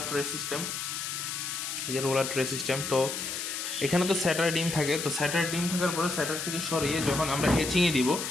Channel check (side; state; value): left; noise; hiss, 4 dB below the sound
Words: ট্রে সিস্টেম, এই যে রোলার ট্রে সিস্টেম। তো এখানে তো স্যাটার ডিম থাকে, তো স্যাটার ডিম থাকার পরে স্যাটার থেকে সরিয়ে যখন আমরা হ্যাচিংয়ে দিব,